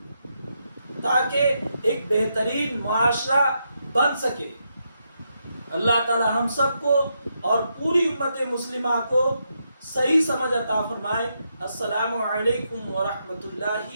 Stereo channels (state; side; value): inverted; both; correlation -0.81